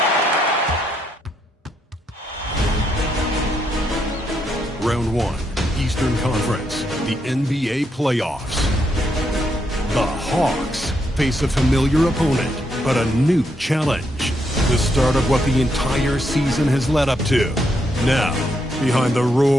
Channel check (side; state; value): both; normal; correlation 0.78